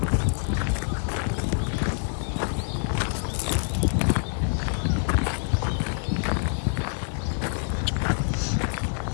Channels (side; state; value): right; silent; 60 dB below the other